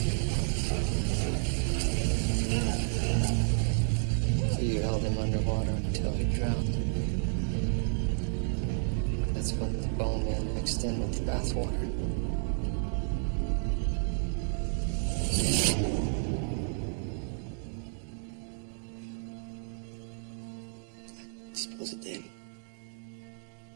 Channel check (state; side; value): silent; left; digital silence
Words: So you held him underwater until he drowned. That's when the bowman mixed in with the bathwater. I suppose it did.